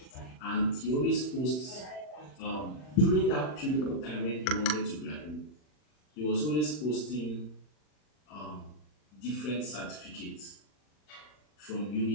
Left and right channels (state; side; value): late; right; 40 ms